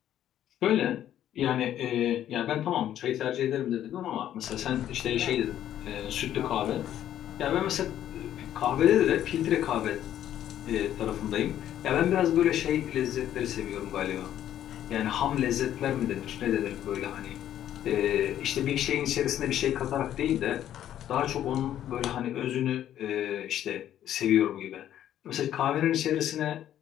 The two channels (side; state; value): right; quieter; 11.3 dB